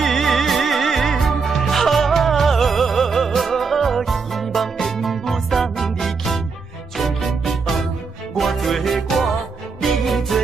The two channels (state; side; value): quieter; left; 4.9 dB